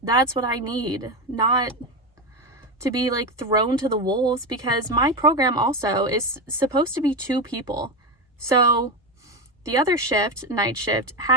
That's what I need, not to be like thrown to the wolves, because my program also is supposed to be 2 people. So the other shift, night shift,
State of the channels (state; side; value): normal; both; correlation 0.15